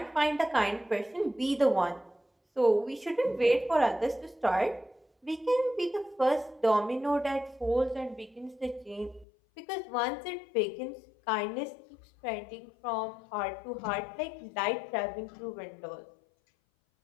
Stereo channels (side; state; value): right; drops out; at 9.2 s